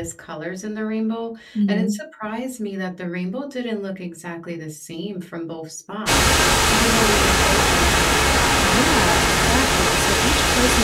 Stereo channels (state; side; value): identical; both; correlation 1.00